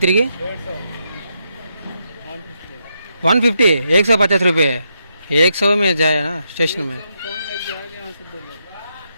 తిరిగి? 150, 150 रुपये. 100 में जाए ना स्टेशन में.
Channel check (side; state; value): both; inverted; correlation -0.81